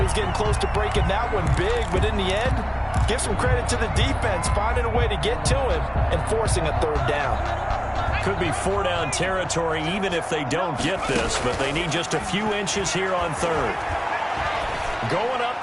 was getting close to breaking that one big, but in the end, give some credit to the defense, finding a way to get to him and forcing a 3rd down. Could be 4-down territory even if they don't get this, but they need just a few inches here on 3rd. Going up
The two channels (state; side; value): identical; both; correlation 1.00